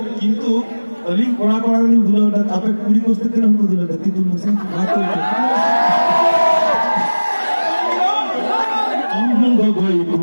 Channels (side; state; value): both; inverted; correlation -1.00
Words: किंतु अलिंग कोड़ा कोड़ा अलिंग दुलोर दा तापे पूरी कोस्ते के नाम को दुलोर दा ती तुम से बात तो आम गगोई